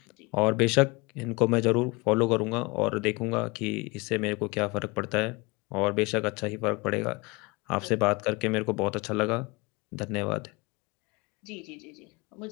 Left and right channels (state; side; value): quieter; right; 25.6 dB